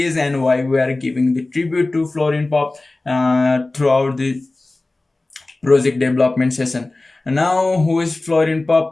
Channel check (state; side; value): quieter; right; 3.0 dB